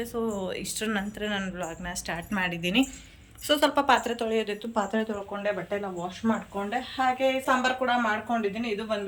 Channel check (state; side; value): identical; both; correlation 1.00